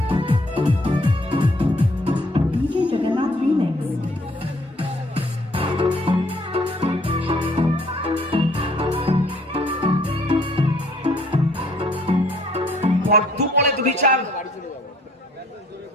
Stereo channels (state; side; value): normal; both; correlation 0.62